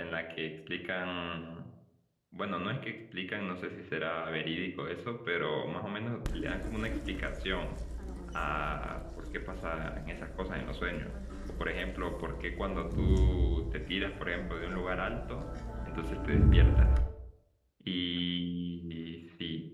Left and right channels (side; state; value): both; identical; correlation 1.00